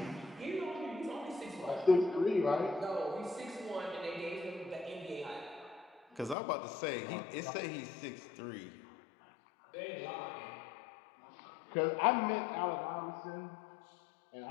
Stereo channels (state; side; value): drops out; right; at 6.4 s